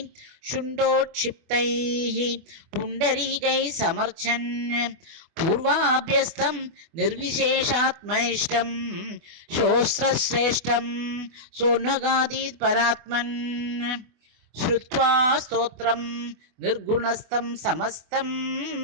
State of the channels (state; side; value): late; left; 24 ms